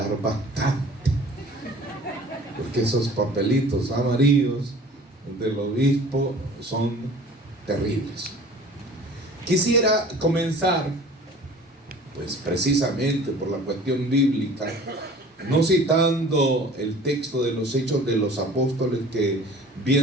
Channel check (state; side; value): normal; both; correlation 0.46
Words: bastante, porque esos papelitos amarillos del obispo son terribles. Quisiera comenzar, pues precisamente por la cuestión bíblica, no citando el texto de los Hechos de los Apóstoles que